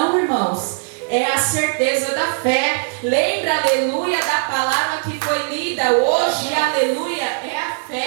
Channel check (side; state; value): left; silent; digital silence